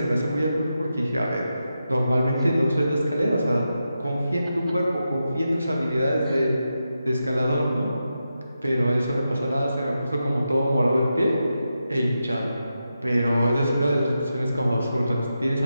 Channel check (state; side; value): inverted; both; correlation -0.88